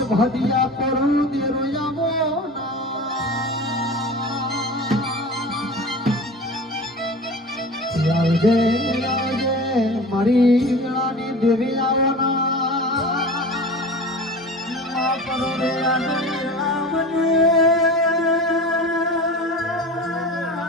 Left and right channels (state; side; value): normal; both; correlation 0.35